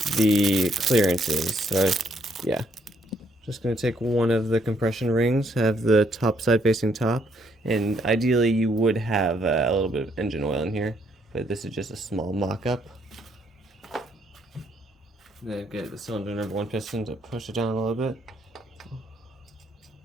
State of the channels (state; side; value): normal; both; correlation 0.71